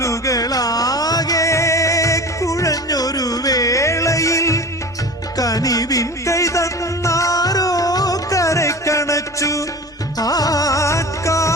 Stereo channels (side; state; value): both; normal; correlation 0.35